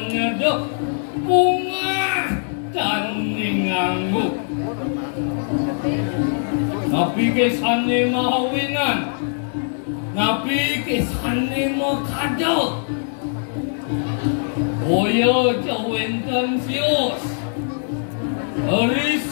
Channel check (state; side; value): silent; right; digital silence